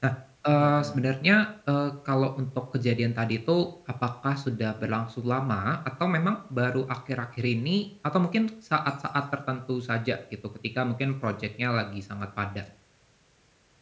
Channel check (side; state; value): both; identical; correlation 1.00